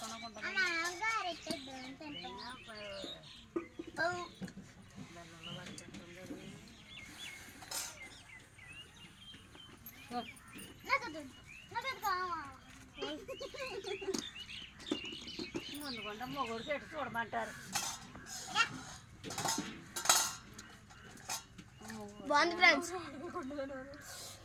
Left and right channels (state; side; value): identical; both; correlation 1.00